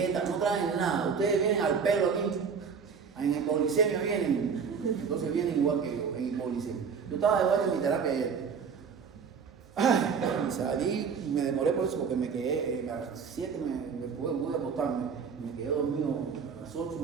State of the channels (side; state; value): left; quieter; 6.1 dB